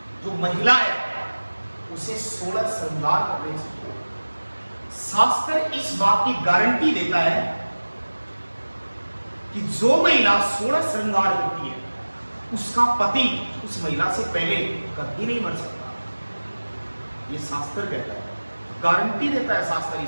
जो महिला है उसे 16 श्रृंगार करने चाहिए। शास्त्र इस बात की गारंटी देता है कि जो महिला 16 श्रृंगार करती है उसका पति उस महिला से पहले कभी नहीं मर सकता। ये शास्त्र कहता है, गारंटी देता है शास्त्र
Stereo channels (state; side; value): inverted; both; correlation -1.00